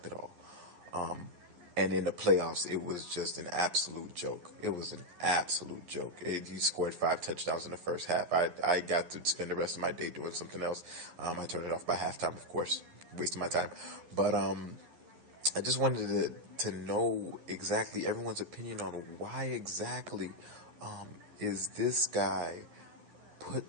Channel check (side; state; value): left; late; 11 ms